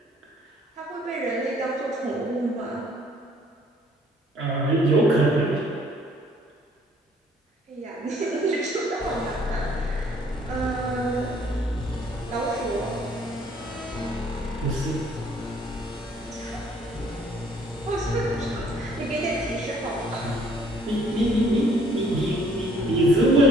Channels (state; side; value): normal; both; correlation 0.61